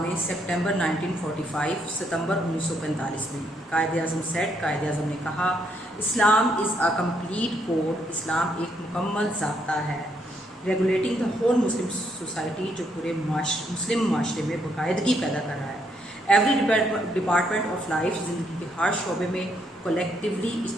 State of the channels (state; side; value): normal; both; correlation 0.74